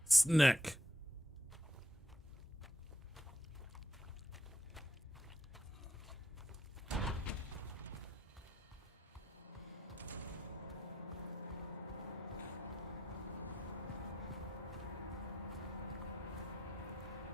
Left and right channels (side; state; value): both; normal; correlation 0.77